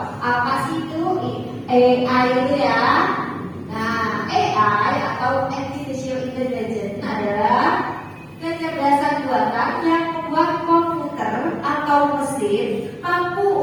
Apa sih itu AI itu ya? Nah, AI atau artificial intelligence adalah kecerdasan buatan yang membuat komputer atau mesin mampu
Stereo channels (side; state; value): both; identical; correlation 1.00